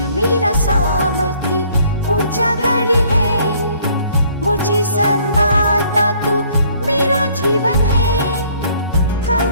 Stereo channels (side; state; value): both; inverted; correlation -0.60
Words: मेरा सामर्थ्य ऊंचा गढ़ है, मुझे संभालता तू मेरा जीवन है।